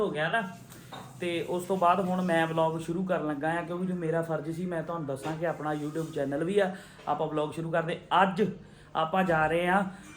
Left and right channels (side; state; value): both; identical; correlation 1.00